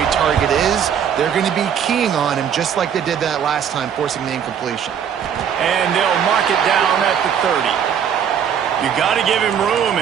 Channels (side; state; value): left; quieter; 8.3 dB